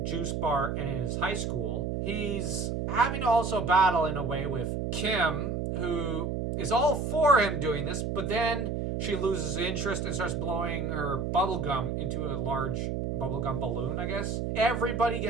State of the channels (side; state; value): right; noise; hum, 2 dB below the sound